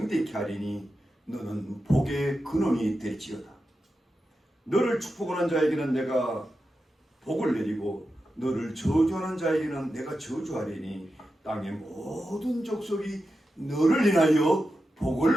하리니 너는 복의 근원이 될지어다. 너를 축복하는 자에게는 내가 복을 내리고 너를 저주하는 자에게는 내가 저주하리니 땅의 모든 족속이 너를 인하여 복을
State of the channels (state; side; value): normal; both; correlation 0.90